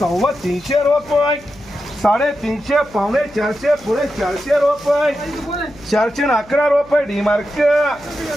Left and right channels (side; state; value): left; noise; hum, 24 dB below the sound